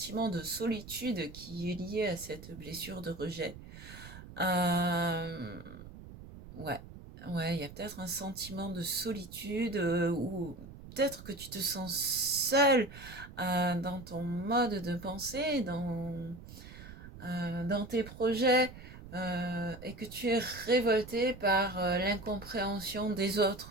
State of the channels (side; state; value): right; noise; rumble, 15 dB below the sound